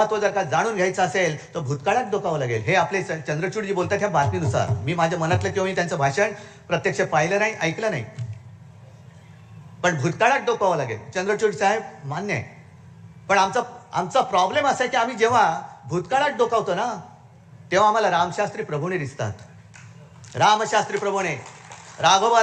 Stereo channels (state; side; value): identical; both; correlation 1.00